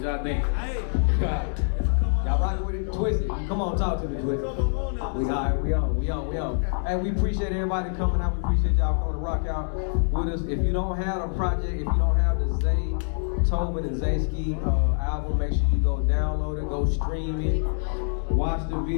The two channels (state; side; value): silent; right; digital silence